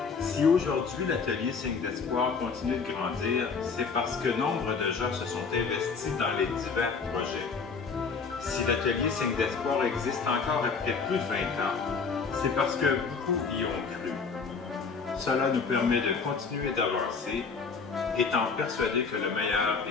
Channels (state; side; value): quieter; right; 5.1 dB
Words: Si aujourd'hui l'atelier Signe d'espoir continue de grandir, c'est parce que nombre de gens se sont investis dans les divers projets. Si l'atelier Signe d'espoir existe encore après plus de 20 ans, c'est parce que beaucoup y ont cru. Cela nous permet de continuer d'avancer, étant persuadés que le meilleur